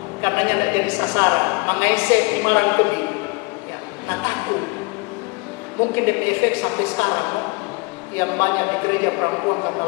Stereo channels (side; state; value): right; quieter; 28.3 dB